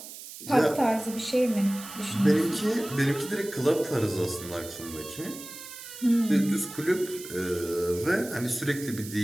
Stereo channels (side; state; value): right; noise; hiss, 13 dB below the sound